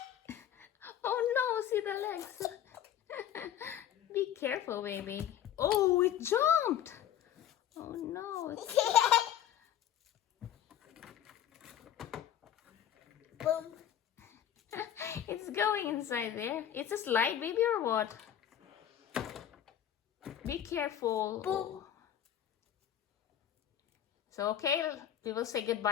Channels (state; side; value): quieter; right; 10.4 dB